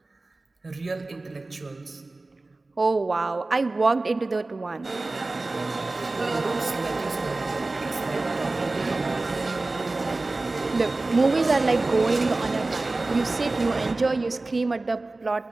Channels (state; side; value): quieter; left; 3.2 dB